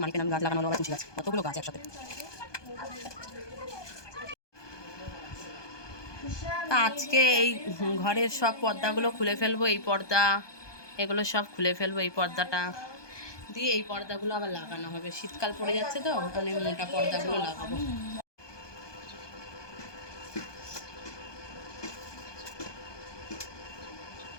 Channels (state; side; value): late; right; 1.2 ms